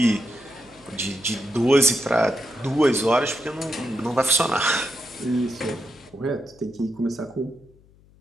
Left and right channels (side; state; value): left; noise; hum, 28 dB below the sound